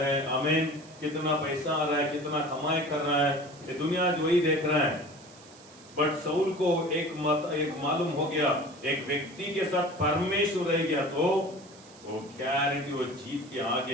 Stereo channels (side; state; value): right; noise; hiss, 23 dB below the sound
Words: आमीन, कितना पैसा आ रहा है, कितना कमाई कर रहा है, ये दुनिया जो वही देख रहा है। बट साउल को एक मालूम हो गया, एक व्यक्ति के साथ परमेश्वर रह गया तो वो गारंटी वो जीत के